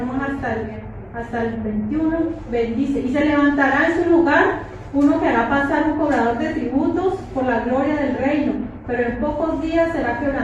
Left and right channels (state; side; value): identical; both; correlation 1.00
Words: hasta el 21. Bendice: y se levantará en su lugar uno que hará pasar un cobrador de tributos por la gloria del reino, pero en pocos días será